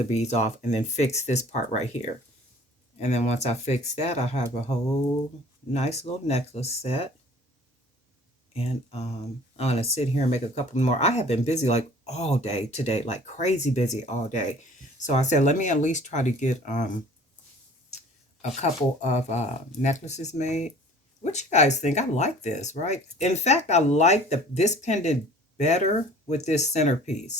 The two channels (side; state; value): both; normal; correlation 0.49